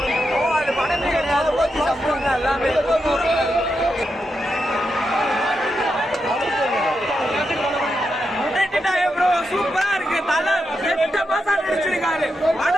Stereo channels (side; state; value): both; normal; correlation 0.85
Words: அது படமே கிடையாது, ஓட்டி சம்பவம் தான் எல்லாமே. சூப்பரா இருக்கு. தலை 8 மாசம் நடிச்சிருக்காரு.